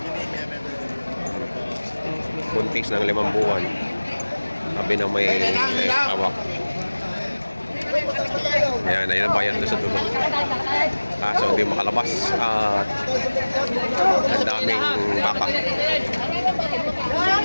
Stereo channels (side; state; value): both; inverted; correlation -1.00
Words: Buntis ng 5 buwan. Sabi na may hawak. Ayan, ayun ang bayan doon sa dulo. So hindi makalabas. Ang daming baka.